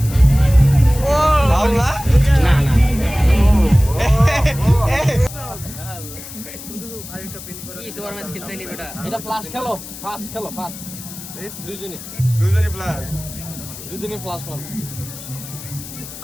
ও বাউলা না না কি সুপার ম্যাচ খেলতে নি বেটা এটা ফ্লাশ খেলো ফাস্ট খেলো ফাস্ট দুইজনই প্লাস দুইজনই ফ্লাশ মারো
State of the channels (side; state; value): left; noise; hiss, 13 dB below the sound